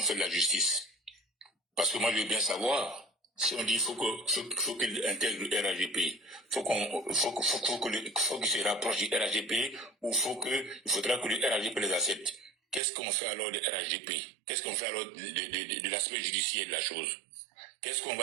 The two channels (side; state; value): left; drops out; at 12.8 s